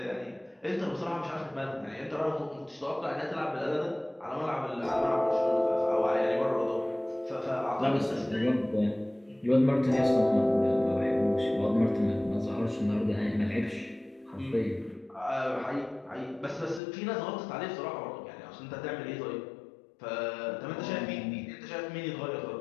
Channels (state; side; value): drops out; right; at 16.8 s